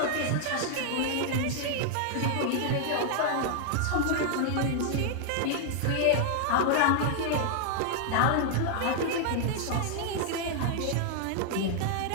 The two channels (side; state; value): both; different; correlation 0.00